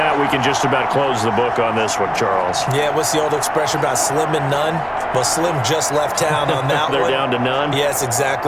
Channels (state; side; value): identical; both; correlation 1.00